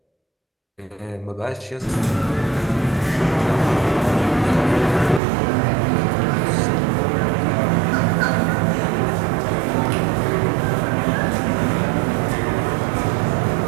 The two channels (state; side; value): drops out; left; at 5.2 s